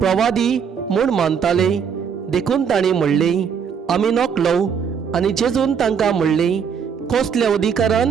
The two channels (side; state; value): left; quieter; 7.0 dB